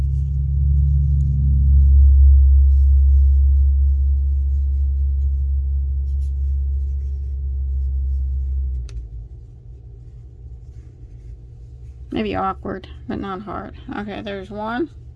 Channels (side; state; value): both; identical; correlation 1.00